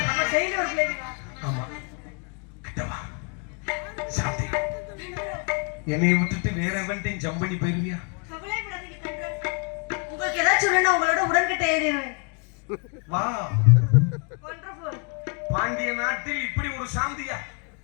அப்ப டெய்லி ஒரு பிளேட். ஆமா. கிட்டவா. சாந்தி. என்னை விட்டுட்டு வேற எவன்டையும் ஜம்ப் பண்ணி போயிருவியா? கவலைப்படாதீங்க கண்ட்ரோல். உங்களுக்கு ஏதாச்சும் சொல்லணும் உங்களோட உடன்கிட்ட எழுதிடுவேன். வா. வண்டர்ஃபுல். பாண்டிய நாட்டில் இப்படி ஒரு சாந்தியா?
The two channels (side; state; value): right; quieter; 36.9 dB